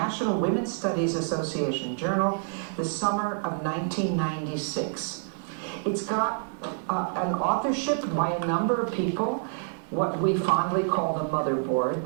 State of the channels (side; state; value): left; silent; digital silence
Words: Women's Studies Association Journal the summer of 1996. It's got an authorship by a number of people, what we fondly call the motherboard,